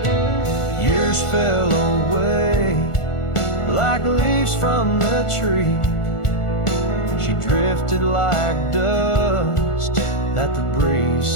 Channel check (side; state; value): right; late; 1.4 ms